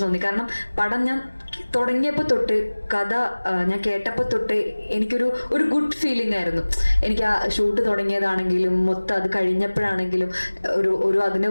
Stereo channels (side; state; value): both; inverted; correlation -1.00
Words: തോന്നി. കാരണം പടം ഞാൻ തുടങ്ങിയപ്പോൾ തൊട്ട്, കഥ ഞാൻ കേട്ടപ്പോൾ തൊട്ട് എനിക്കൊരു ഗുഡ് ഫീലിംഗ് ആയിരുന്നു. എനിക്ക് ആ ഷൂട്ട് തുടങ്ങിയതാണെങ്കിലും മൊത്തം അത് കഴിഞ്ഞപ്പോഴാണെങ്കിലും ഒരു അതിന്റെ